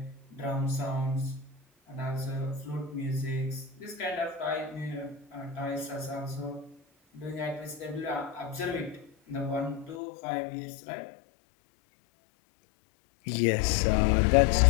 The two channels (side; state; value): right; drops out; at 10.0 s